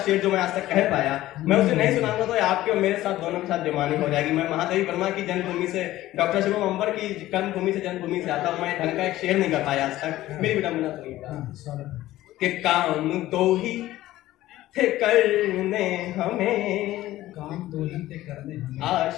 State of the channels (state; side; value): quieter; right; 15.5 dB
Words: जो मैं आज तक कह पाया, मैं उसे नहीं सुनाऊंगा तो आपके और मेरे साथ दोनों के साथ बेईमानी हो जाएगी। मैं महादेवी वर्मा की जन्मभूमि से, डॉक्टर शिवम अंबर की कर्मभूमि से, जन्मभूमि से आता हूं, मैं ढंग का एक शेर नहीं कर पाया आज तक। मेरी विडंबना सुनिएगा कि काम दो ही थे करने हमें, काम दो ही थे करने हमें,